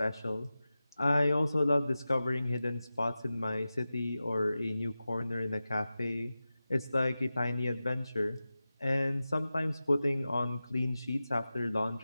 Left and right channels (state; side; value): inverted; both; correlation -0.94